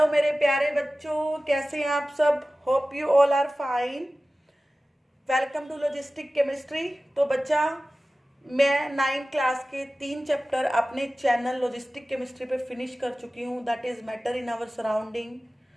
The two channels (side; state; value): both; normal; correlation 0.96